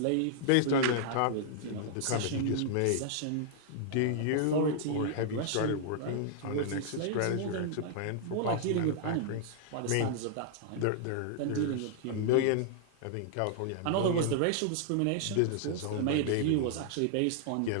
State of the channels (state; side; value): different; both; correlation -0.01